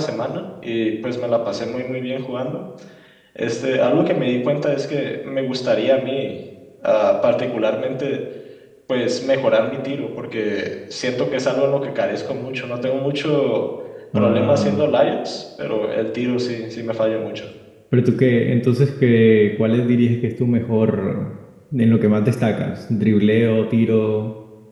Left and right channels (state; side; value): identical; both; correlation 1.00